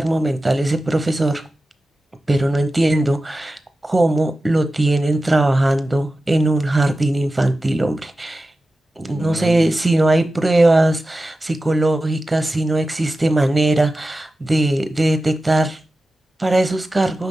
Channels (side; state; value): both; normal; correlation 0.94